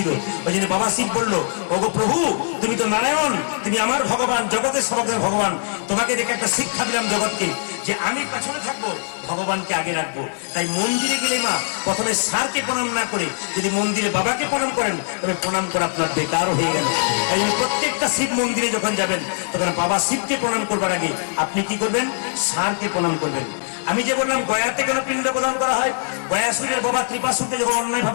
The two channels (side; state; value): right; silent; digital silence